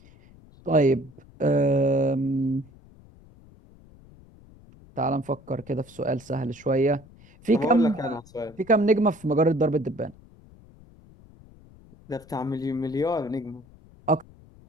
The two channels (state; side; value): noise; left; rumble, 24 dB below the sound